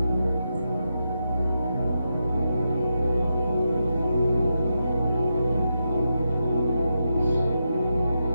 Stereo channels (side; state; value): both; inverted; correlation -0.86